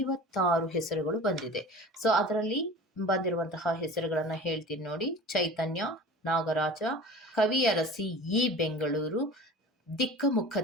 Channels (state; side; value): normal; both; correlation 0.39